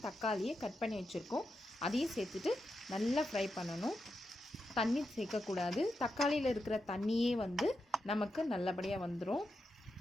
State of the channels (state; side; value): normal; both; correlation 0.87